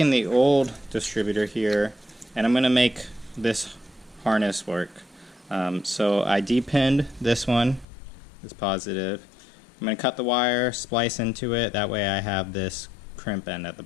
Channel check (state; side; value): drops out; right; at 7.9 s